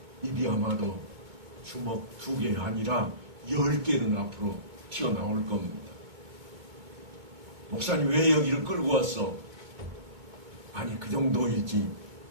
입이 아마도 주먹 2개 아니라 10개는 앞으로 튀어나올 겁니다. 목사님 왜 여기를 끌고 왔어? 아니 그 정도일지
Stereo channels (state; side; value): late; left; 2.3 ms